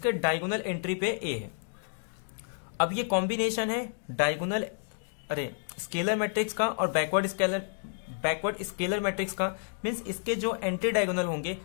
diagonal entry पे A है. अब ये combination है diagonal scalar matrix का और बैकवर्ड स्केलर मैट्रिक्स का. मींस इसके जो एंटी डायगोनल होंगे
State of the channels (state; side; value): silent; right; digital silence